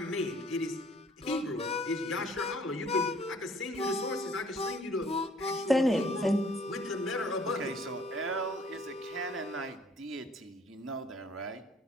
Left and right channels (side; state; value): both; normal; correlation 0.58